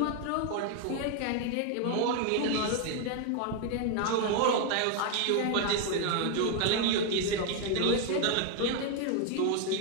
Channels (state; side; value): different; both; correlation 0.01